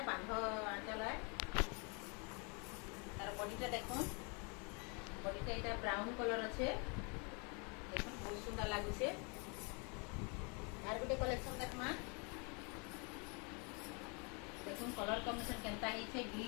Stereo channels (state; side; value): quieter; right; 33.9 dB